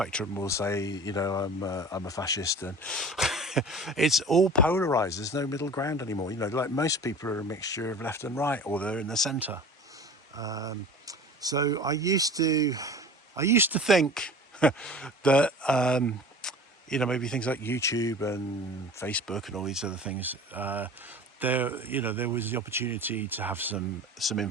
will say, I'm a fascist, and it's all polarized. There's no middle ground anymore. Like most people are a mixture of left and right, or they're in the center. So I used to think that maybe things like YouTube and Facebook and all these other things, there was the opportunity to have some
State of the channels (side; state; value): both; normal; correlation 0.40